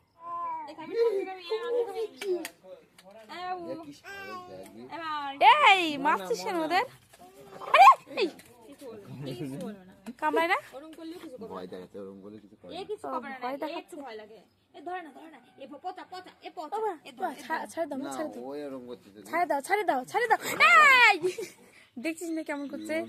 এই মারছিস কেন ওদের? কামড়ায় না? ভয় দেখাচ্ছে, ওরকম বলে কিছু করে দেখছিস না কেমন করছে?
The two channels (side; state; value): both; identical; correlation 1.00